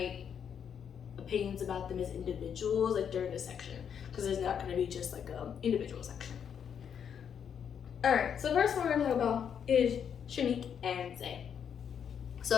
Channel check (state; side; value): quieter; right; 7.9 dB